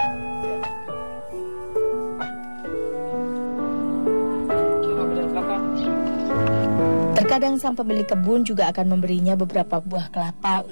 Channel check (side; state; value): both; inverted; correlation -1.00